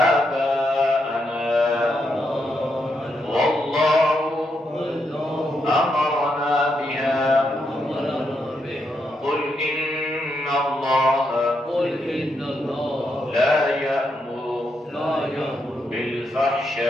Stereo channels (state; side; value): normal; both; correlation 0.81